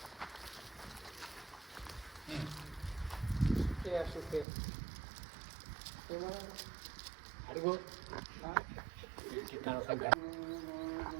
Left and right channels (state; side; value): drops out; left; at 4.5 s